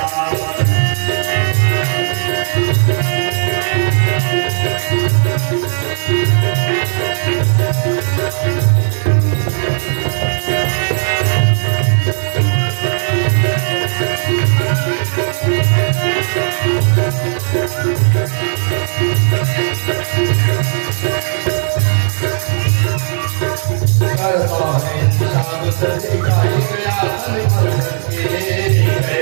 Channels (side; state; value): left; silent; digital silence